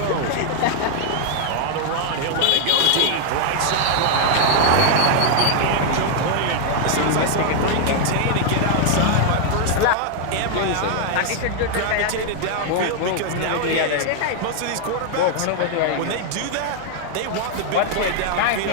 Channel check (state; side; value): different; both; correlation 0.00